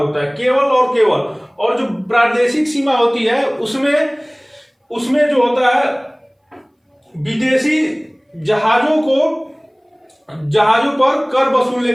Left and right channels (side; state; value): both; identical; correlation 1.00